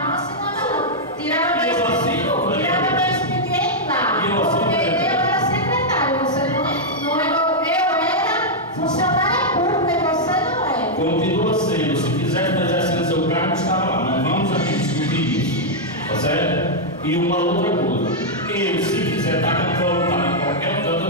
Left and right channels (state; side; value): normal; both; correlation -0.04